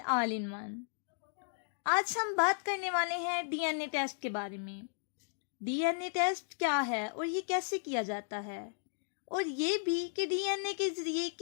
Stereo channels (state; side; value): silent; right; digital silence